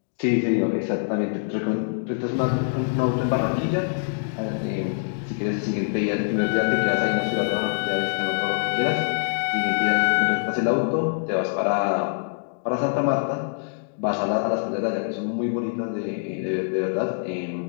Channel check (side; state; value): right; silent; digital silence